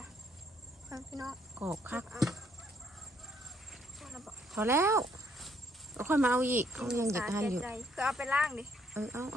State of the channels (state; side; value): normal; both; correlation 0.69